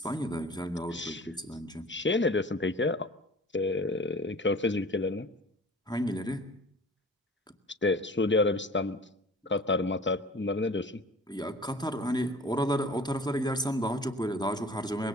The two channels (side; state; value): both; normal; correlation 0.44